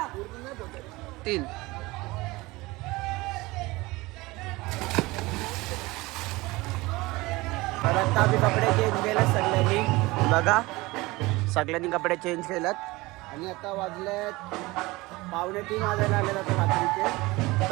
3 तर आता आम्ही कपडे चेंज केलेत सगळ्यांनी. बघा सगळ्यांनी कपडे चेंज केलेत आणि आता वाजलेत 2:45 वाजायला आलेत आता रात्रीचे.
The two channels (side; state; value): left; quieter; 21.6 dB